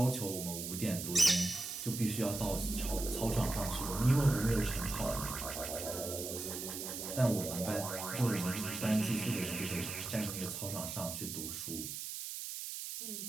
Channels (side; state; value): right; noise; hiss, 6 dB below the sound